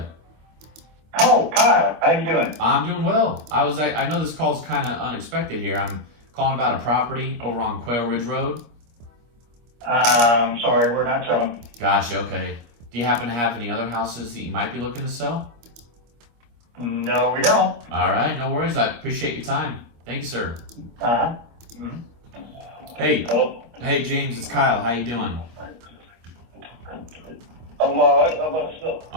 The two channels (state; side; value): late; left; 25 ms